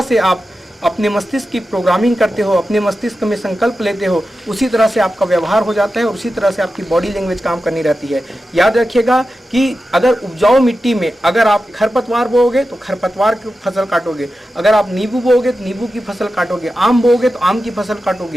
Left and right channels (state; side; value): normal; both; correlation 0.92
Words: से आप अपने मस्तिष्क की प्रोग्रामिंग करते हो, अपने मस्तिष्क में संकल्प लेते हो, उसी तरह से आपका व्यवहार हो जाता है और उसी तरह से आपकी बॉडी लैंग्वेज काम करनी रहती है। याद रखिएगा कि अगर उपजाऊ मिट्टी में अगर आप खरपतवार बोओगे तो खरपतवार की फसल काटोगे, अगर आप नींबू बोओगे तो नींबू की फसल काटोगे, आम बोओगे तो आम की फसल